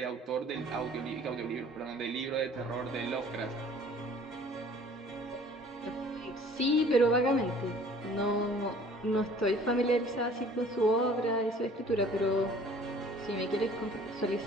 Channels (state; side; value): normal; both; correlation 0.51